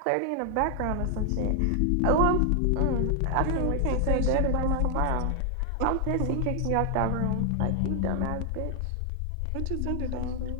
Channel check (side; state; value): both; different; correlation 0.00